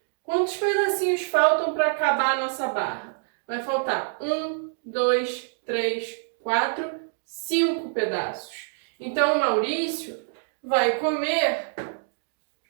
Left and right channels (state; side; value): silent; left; digital silence